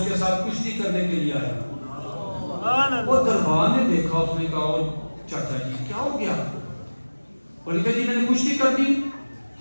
کے ساتھ کشتی کرنے کے لیے آیا. وہ دربار نے دیکھا, اس نے کہا چاچا جی کیا ہو گیا؟ اور کہا جی میں نے کشتی کر دی.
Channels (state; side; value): inverted; both; correlation -1.00